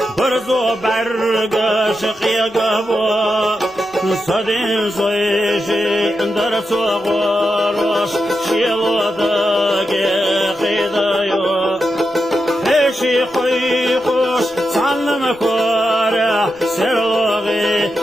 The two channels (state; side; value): noise; right; rumble, 29 dB below the sound